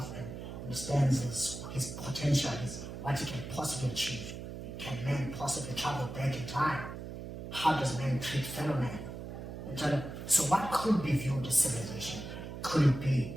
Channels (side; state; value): right; noise; hum, 9 dB below the sound